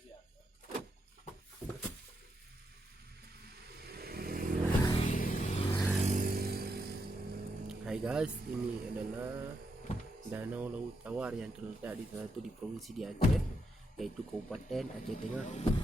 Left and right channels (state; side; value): normal; both; correlation 0.81